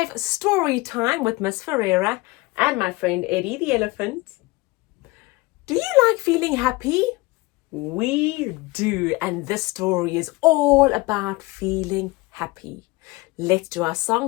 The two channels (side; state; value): right; quieter; 22.4 dB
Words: story time with Miss Ferreira and my friend Eddie the elephant. Do you like feeling happy? We do, and this story is all about feeling happy. Let's do our